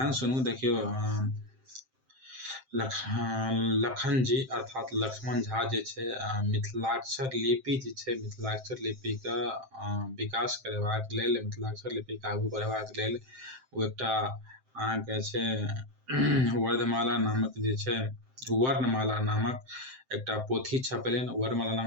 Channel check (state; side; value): late; left; 7.7 ms